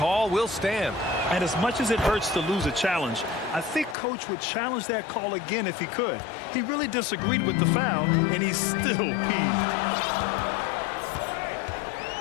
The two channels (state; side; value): drops out; right; at 4.0 s